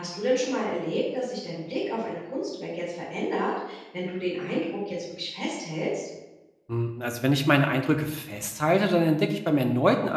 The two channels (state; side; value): identical; both; correlation 1.00